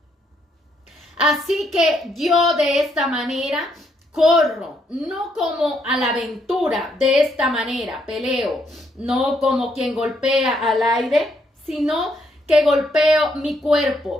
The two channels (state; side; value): normal; both; correlation 0.74